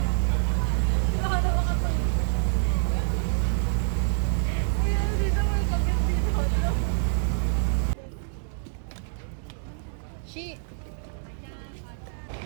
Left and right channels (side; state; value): left; silent; digital silence